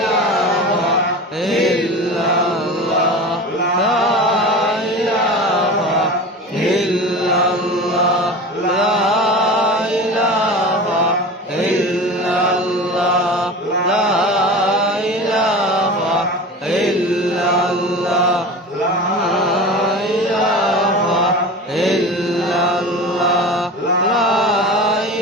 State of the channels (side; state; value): both; normal; correlation 0.33